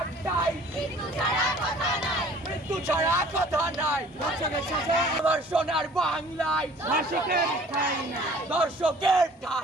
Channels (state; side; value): normal; both; correlation 0.51